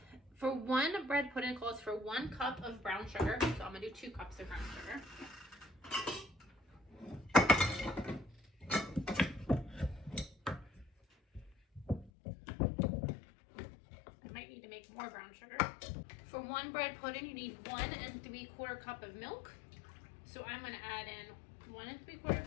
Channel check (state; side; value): drops out; right; at 12.1 s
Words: for 1 bread pudding calls for 1 cup of brown sugar. So I'm gonna do 2 cups of brown sugar. I might need to make more brown sugar. For 1 bread pudding, you need 1 3/4 cup of milk. So I'm gonna add in 1